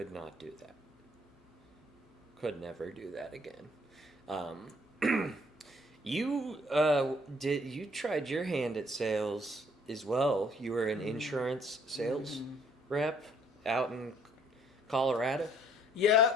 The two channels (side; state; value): both; normal; correlation 0.62